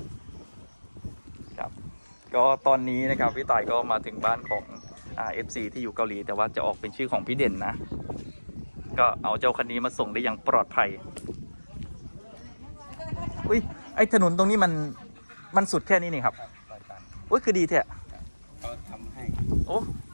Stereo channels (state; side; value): inverted; both; correlation -1.00